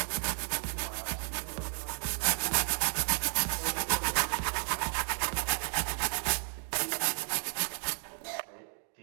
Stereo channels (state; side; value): silent; left; 56 dB below the other